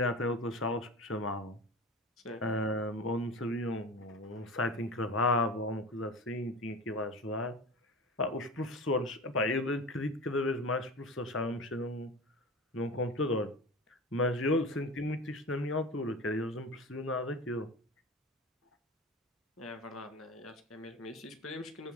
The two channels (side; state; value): both; normal; correlation 0.31